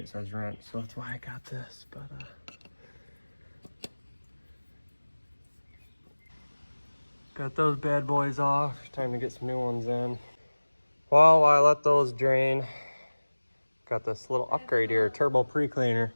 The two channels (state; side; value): inverted; both; correlation -1.00